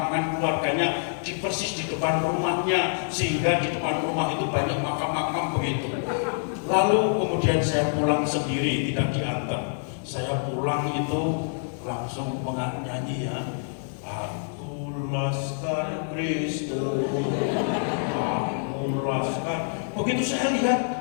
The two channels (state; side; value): silent; right; digital silence